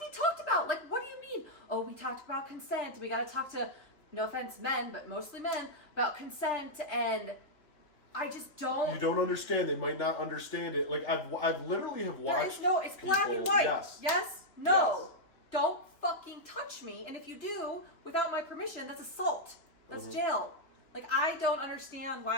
talked about. What do you mean? Oh, we talked about consent. We got to talk to, no offense, men, but mostly men, about consent. And I just don't. You don't understand. They might not understand it. I've literally have watched. It's black and white. Yes. Yes? No. Yes. Don't fucking touch me. And if you do, without my permission, that's assault. That's jail. I don't understand.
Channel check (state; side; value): late; right; 3.0 ms